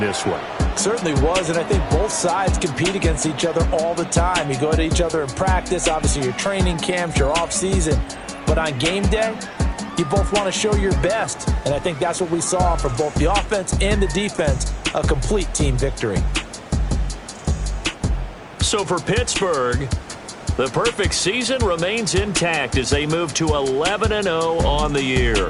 this one. Certainly was, and I think both sides compete against each other all the time. You go to each other in practice, obviously your training camps, your off-season. But on game day, you both want to show your best. And I think that's what we saw from both the offense and the defense, a complete team victory. So for Pittsburgh, the perfect season remains intact as they move to 11-0 on the year.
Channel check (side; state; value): both; identical; correlation 1.00